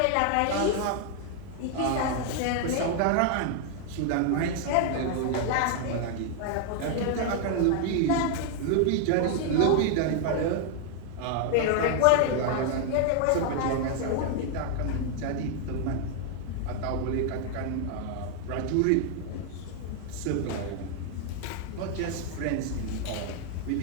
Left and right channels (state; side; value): different; both; correlation 0.00